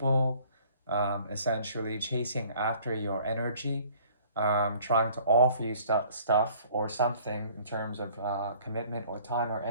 essentially chasing after your energy, trying to offer you stuff or something in terms of commitment or time or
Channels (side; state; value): both; inverted; correlation -0.55